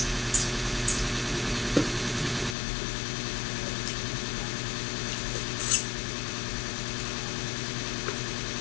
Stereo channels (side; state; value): right; drops out; at 2.6 s